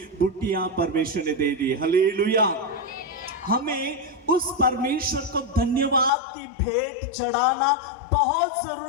बुट्टियां परमेश्वर ने दे दी। हालेलुया। हमें उस परमेश्वर को धन्यवाद की भेंट चढ़ाना बहुत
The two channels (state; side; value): drops out; right; at 6.1 s